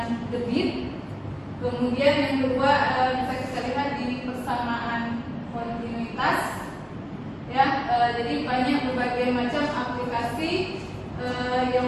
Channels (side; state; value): both; identical; correlation 1.00